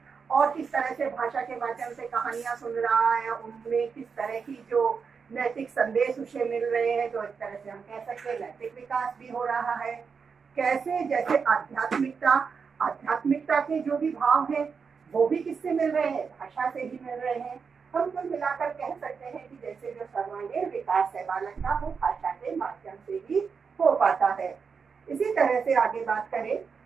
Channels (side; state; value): left; quieter; 5.7 dB